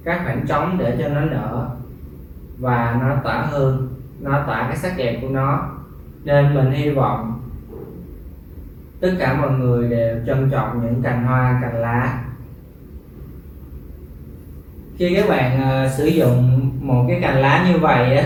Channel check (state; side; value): identical; both; correlation 1.00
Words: các khoảng trống để cho nó nở và nó tỏa hương, nó tỏa cái sắc đẹp của nó. Nên mình hy vọng tất cả mọi người đều trân trọng những cành hoa, cành lá. Khi các bạn sử dụng một cái cành lá như vậy